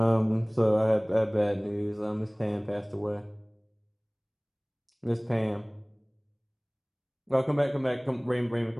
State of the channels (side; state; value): both; identical; correlation 1.00